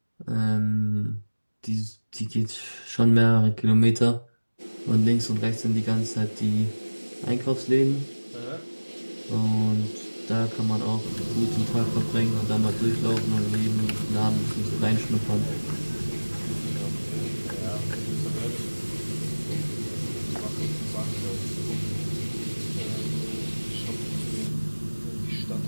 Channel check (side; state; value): both; inverted; correlation -1.00